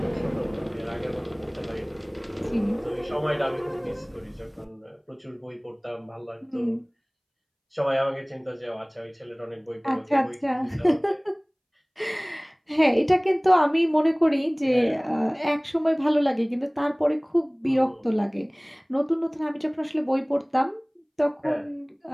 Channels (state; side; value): identical; both; correlation 1.00